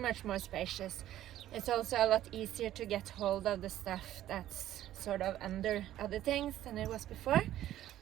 more spacious. It's also a lot easier to get hold of the stuff that's sort of under other things than it was before.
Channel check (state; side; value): quieter; left; 13.0 dB